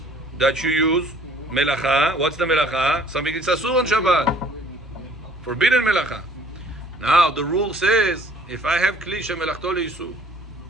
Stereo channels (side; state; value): both; normal; correlation 0.56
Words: that you use, melacha. What's the melacha? Something that's asur on Shabbat. Forbidden melacha. Now the rule says, if I have kli shemelachto leisur,